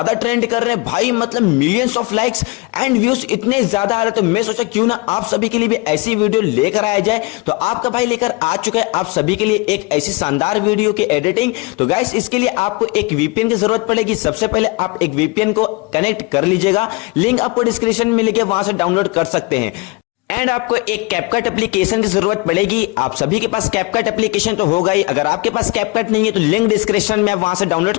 ट्रेंड कर रहे हैं भाई, मतलब millions of likes and views इतने ज्यादा आ रहे। तो मैं सोचा क्यों ना आप सभी के लिए भी ऐसी वीडियो लेकर आया जाए। तो आपका भाई लेकर आ चुका है आप सभी के लिए एक ऐसी शानदार वीडियो की एडिटिंग। तो गाइस इसके लिए आपको एक वीपीएन की जरूरत पड़ेगी। सबसे पहले आप एक वीपीएन को कनेक्ट कर लीजिएगा, लिंक आपको डिस्क्रिप्शन में मिलेगा, वहां से डाउनलोड कर सकते हैं। एंड आपको एक कैपकट एप्लीकेशन की जरूरत पड़ेगी। आप सभी के पास कैपकट एप्लीकेशन तो होगा ही, अगर आपके पास कैपकट नहीं है तो लिंक डिस्क्रिप्शन में आप वहां से डाउनलोड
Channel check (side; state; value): right; quieter; 25.6 dB